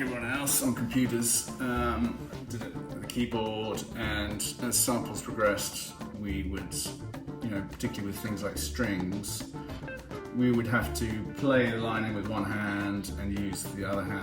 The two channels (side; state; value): both; identical; correlation 1.00